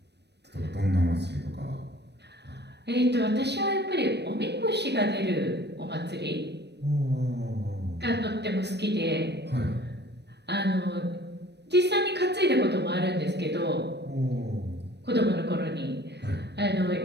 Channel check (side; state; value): left; late; 0.49 ms